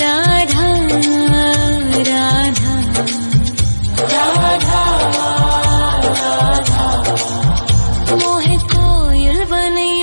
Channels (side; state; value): both; inverted; correlation -1.00